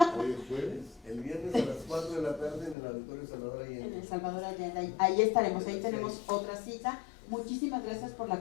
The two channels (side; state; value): right; drops out; at 2.8 s